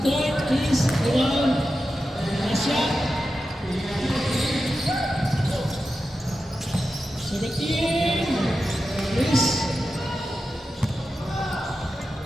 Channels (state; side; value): normal; both; correlation 0.91